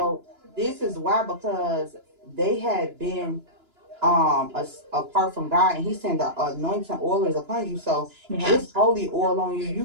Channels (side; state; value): left; late; 2.9 ms